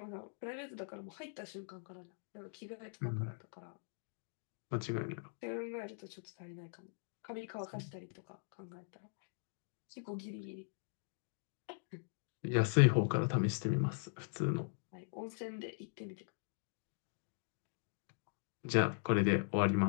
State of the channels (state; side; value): silent; right; digital silence